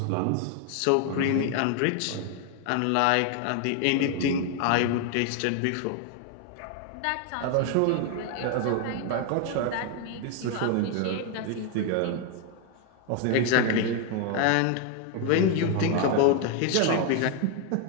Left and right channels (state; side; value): different; both; correlation 0.01